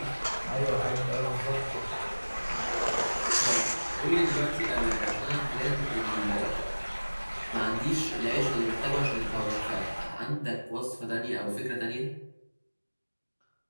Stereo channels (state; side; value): inverted; both; correlation -1.00